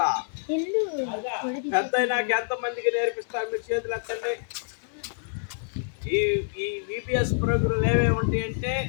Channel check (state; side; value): silent; right; digital silence